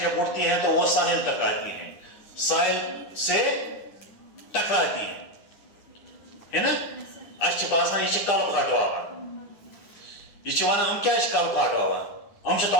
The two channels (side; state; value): right; late; 9.9 ms